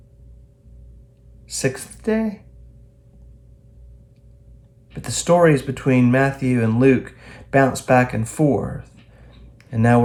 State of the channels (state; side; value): identical; both; correlation 1.00